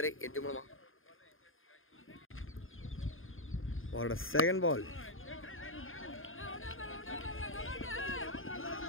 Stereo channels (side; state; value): right; late; 0.59 ms